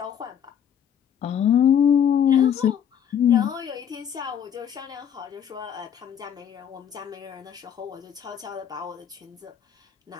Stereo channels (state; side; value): quieter; right; 8.7 dB